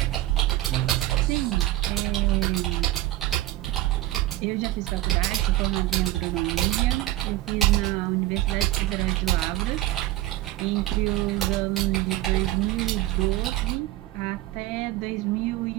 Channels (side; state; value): left; quieter; 16.1 dB